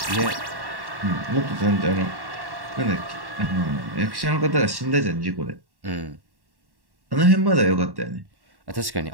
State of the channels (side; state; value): left; late; 1.1 ms